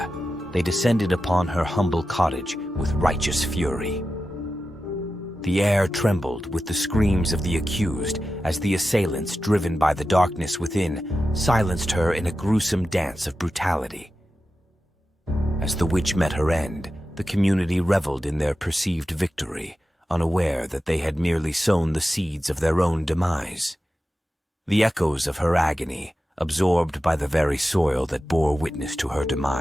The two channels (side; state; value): both; normal; correlation 0.92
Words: they descended upon her humble cottage with righteous fury. The air trembled with the screams of the accused as the assailants, driven by the darkness within, silenced her in a gruesome dance of brutality. As the witch met her end, the community reveled in their perceived victory, unaware that they had merely sown the seeds of their own demise. The echoes of her agony, absorbed by the very soil that bore witness to her